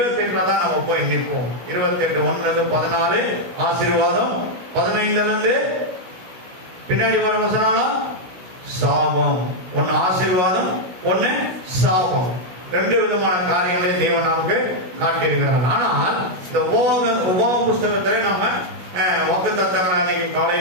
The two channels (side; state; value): left; late; 16 ms